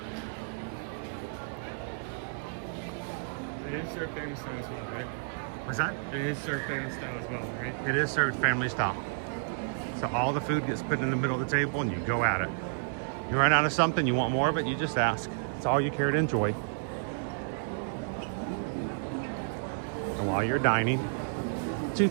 It is served family style as well, right? What's that? It is served family style as well, right? It is served family style. So all the food gets put in the middle of the table and you go at it. You run out of something, you want more of it, you just ask. It's all you care to enjoy. And while you're dining, two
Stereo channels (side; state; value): left; silent; digital silence